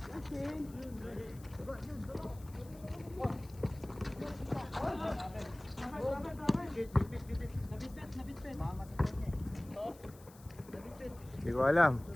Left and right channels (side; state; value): left; noise; hiss, 23 dB below the sound